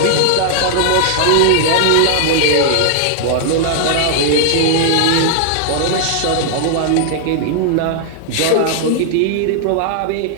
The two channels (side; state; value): both; different; correlation 0.00